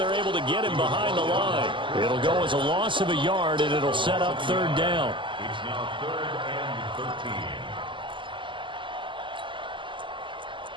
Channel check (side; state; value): left; late; 0.24 ms